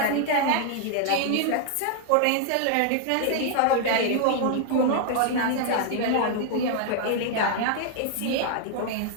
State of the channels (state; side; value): different; both; correlation 0.00